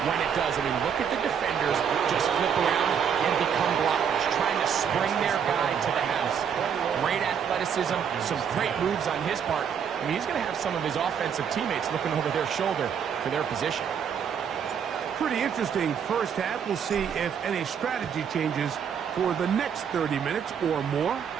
when it does. I mean, look at the defenders just flip around and become blockers, trying to spring their guy to the house. Great athleticism, some great moves on his part. I mean, he's going to have some of his offensive teammates looking over their shoulder for their position. Pretty interesting first half. We'll see if any strategy changes for the next 30 minutes or more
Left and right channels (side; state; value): left; quieter; 7.6 dB